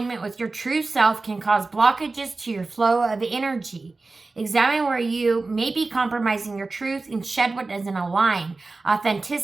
with your true self can cause blockages to your flow of energy. Examine where you may be compromising your truth and shed what doesn't align.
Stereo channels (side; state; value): left; quieter; 3.6 dB